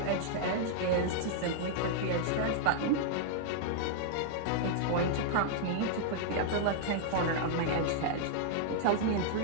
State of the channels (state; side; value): different; both; correlation -0.01